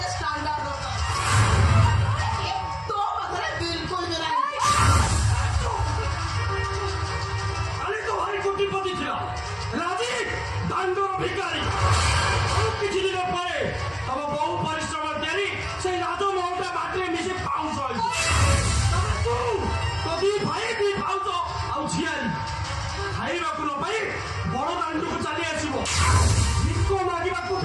स्टैंडर्ड होता तो बकरे बिल्कुल भी नहीं କାଲି ତ ଭାରି କୋଟିପତି ଥିଲା ରାଜି ଦାଣ୍ଡର ଭିକାରୀ ଆଉ କିଛି ଦିନ ପରେ ତମ ବହୁ ପରିଶ୍ରମ ତିଆରି ସେଇ ରାଜମହଲଟା ମାଟିରେ ମିଶି ପାଉଁଶ ହେଇଛି ତାପରେ ତୁ ତୋ ଦି ଭାଇ ଦି ପାଉଁଶ ଆଉ ଝିଆରୀ ଖାଇବାକୁ ନ ପାଇ ବଡ ଦାଣ୍ଡକୁ ଚାଲି ଆସିବ ଭିକ ମାଗିବାକୁ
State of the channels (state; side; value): identical; both; correlation 1.00